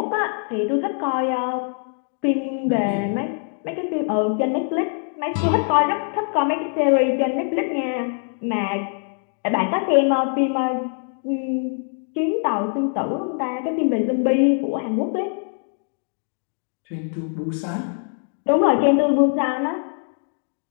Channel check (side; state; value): right; silent; 56 dB below the other